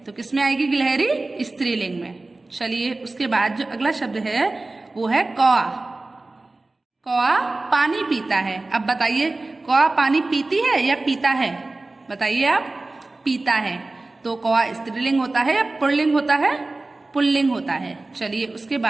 तो किस में आएगी गिलहरी, स्त्रीलिंग में। चलिए उसके बाद जो अगला शब्द है वो है कौआ। कौआ पानी पीता है। अब बताइए कौआ पानी पीती है या पीता है, बताइए आप। पीता है, तो कौआ स्त्रीलिंग होता है या पुल्लिंग होता है, पुल्लिंग होता है। चलिए उसके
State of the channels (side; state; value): left; quieter; 3.1 dB